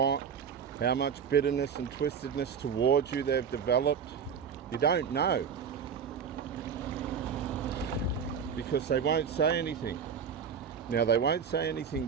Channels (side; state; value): left; quieter; 7.0 dB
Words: how much bitterness and twistedness towards you they've developed. You don't know, because they won't say anything. Now, they won't say anything